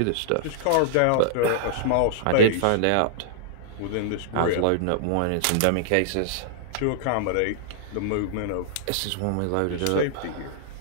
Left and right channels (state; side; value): different; both; correlation -0.01